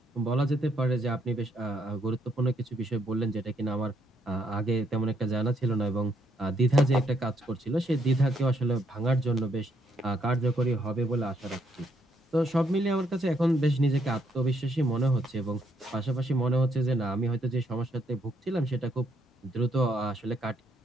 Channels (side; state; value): both; normal; correlation 0.73